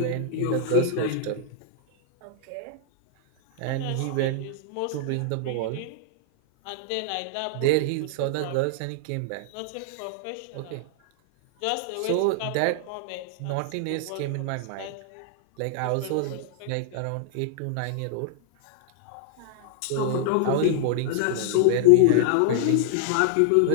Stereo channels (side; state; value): both; different; correlation -0.01